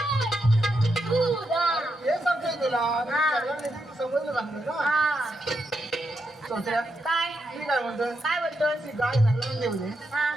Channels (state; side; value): normal; both; correlation 0.83